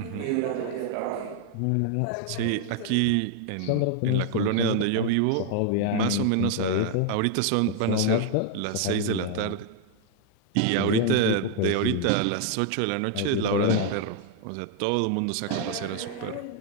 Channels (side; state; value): both; different; correlation 0.00